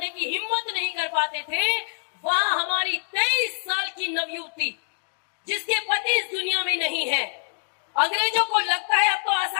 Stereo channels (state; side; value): silent; right; digital silence